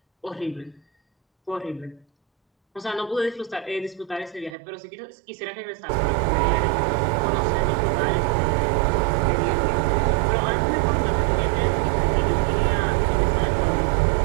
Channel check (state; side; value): drops out; left; at 4.5 s